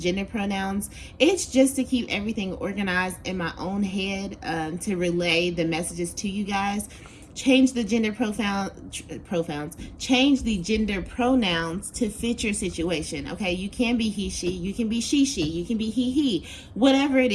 pronouns, it's just to keep everything organized in my own head, to relay the messages to you guys. Change the gender change the gender pronouns to fit your situation. Okay, you can be he, she, you can be she, you can be he, whatever it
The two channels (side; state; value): both; identical; correlation 1.00